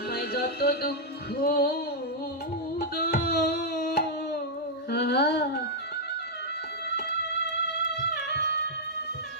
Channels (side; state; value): both; normal; correlation -0.05